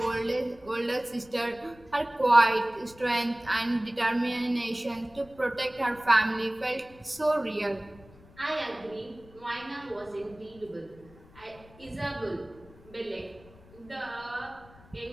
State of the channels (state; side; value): noise; left; rumble, 23 dB below the sound